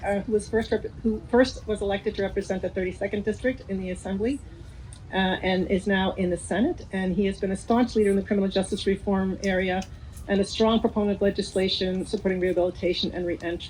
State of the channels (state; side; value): identical; both; correlation 1.00